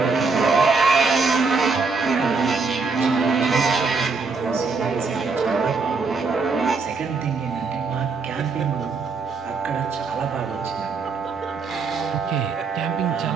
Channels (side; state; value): left; quieter; 4.5 dB